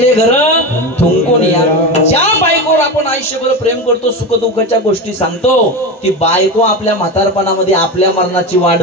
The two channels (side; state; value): both; normal; correlation 0.21